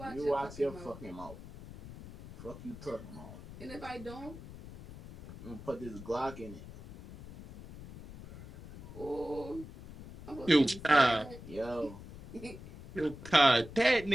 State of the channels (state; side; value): noise; left; rumble, 15 dB below the sound